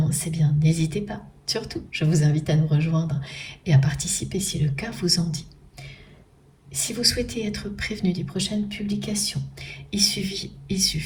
eh bien n'hésitez pas. Surtout, je vous invite à nous rejoindre et à participer si le cas vous en dit. Si vous souhaitez être prévenu des prochaines publications, il suffit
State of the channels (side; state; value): both; identical; correlation 1.00